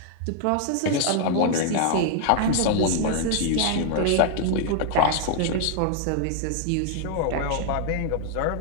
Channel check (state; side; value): different; both; correlation 0.00